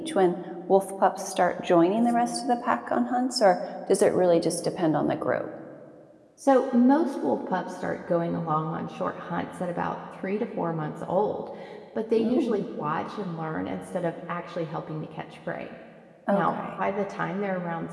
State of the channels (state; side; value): identical; both; correlation 1.00